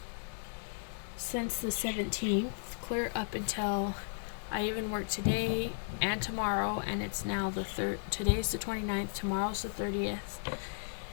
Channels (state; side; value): silent; right; digital silence